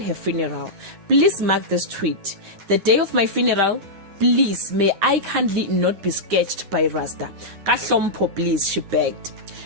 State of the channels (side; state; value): left; late; 10 ms